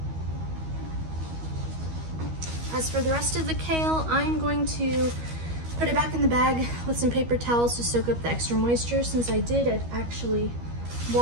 As for the rest of the kale, I'm going to put it back in the bag with some paper towels to soak up the extra moisture. Since I did actually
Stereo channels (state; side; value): late; left; 13 ms